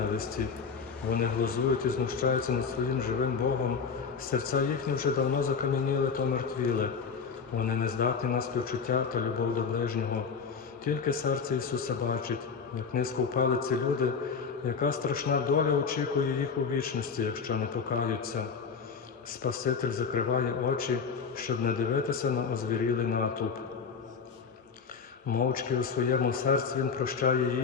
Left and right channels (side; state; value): right; quieter; 5.8 dB